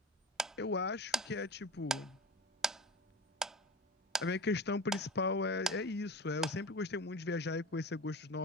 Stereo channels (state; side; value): normal; both; correlation 0.32